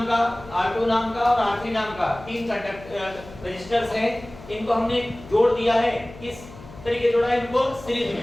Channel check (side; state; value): left; noise; hum, 17 dB below the sound